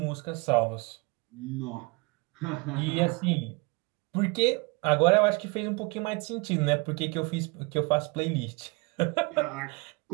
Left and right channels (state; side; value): quieter; left; 27.8 dB